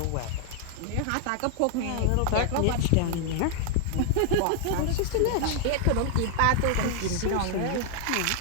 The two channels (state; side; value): different; both; correlation 0.00